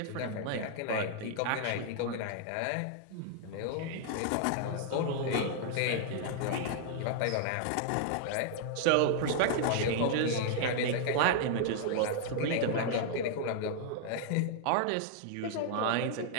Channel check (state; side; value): different; both; correlation -0.01